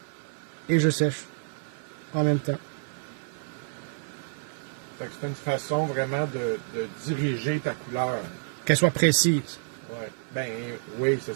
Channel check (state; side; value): silent; left; 55 dB below the other